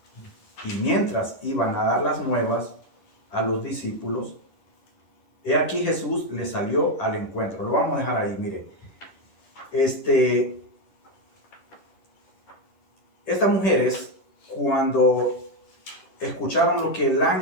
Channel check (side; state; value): right; late; 10 ms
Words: Y mientras iban a dar las nuevas a los discípulos, he aquí Jesús les salió al encuentro. Lo vamos a dejar ahí, mire. Estas mujeres, cuando escucharon lo que el